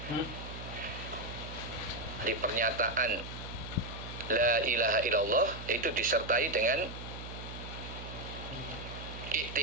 Di pernyataan La ilaha illallah itu disertai dengan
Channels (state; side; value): noise; right; hum, 10 dB below the sound